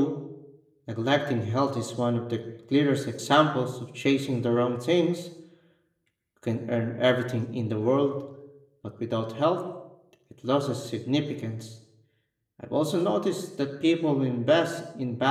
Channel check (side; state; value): both; identical; correlation 1.00